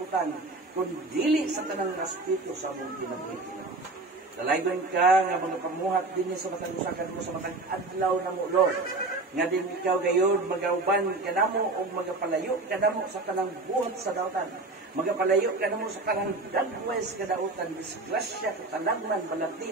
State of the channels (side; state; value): left; quieter; 3.2 dB